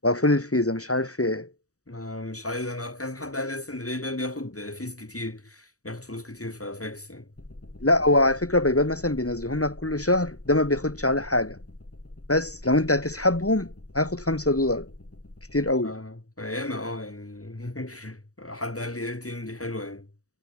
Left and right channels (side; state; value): right; late; 0.66 ms